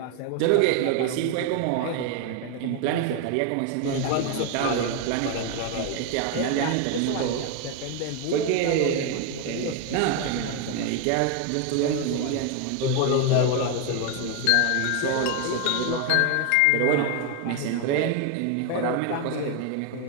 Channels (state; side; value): different; both; correlation 0.01